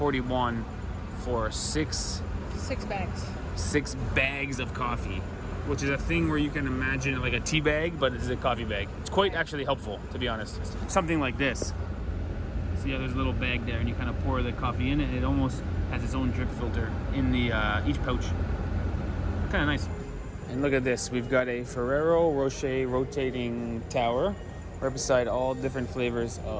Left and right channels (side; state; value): both; identical; correlation 1.00